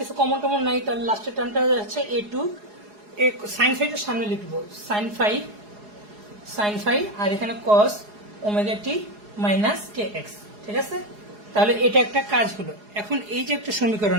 কমন টমন নাই, তাহলে লাস্টের টার্মটা হচ্ছে a2, সাইন ফাইটার সামনে লিখবো সাইন ফাই, আর এখানে কস omega t minus k x. ঠিক আছে, তাহলে এটা একটা কাজ হলো। এখন এই যে একটা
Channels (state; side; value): late; left; 4.8 ms